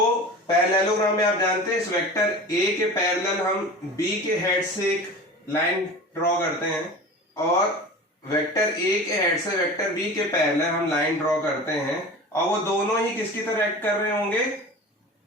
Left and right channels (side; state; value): both; normal; correlation 0.35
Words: पैरेललोग्राम में आप जानते हैं इस वेक्टर ए के पैरेलल हम बी के हेड से एक लाइन ड्रॉ करते हैं, और वेक्टर ए के हेड से वेक्टर बी के पैरेलल हम लाइन ड्रॉ करते हैं, और वो दोनों ही किसकी तरह एक्ट कर रहे होंगे,